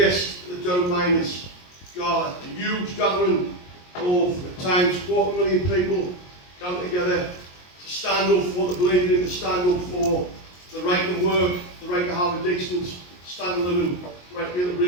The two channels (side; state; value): right; late; 22 ms